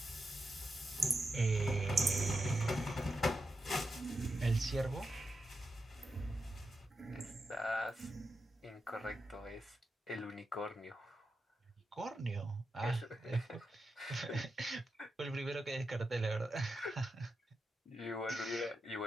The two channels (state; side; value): normal; both; correlation 0.88